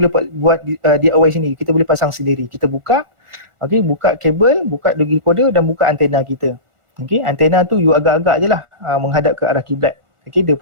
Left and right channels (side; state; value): left; late; 1.4 ms